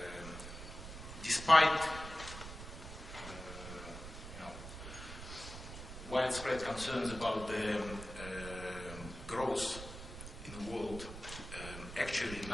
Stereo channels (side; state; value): right; noise; rumble, 11 dB below the sound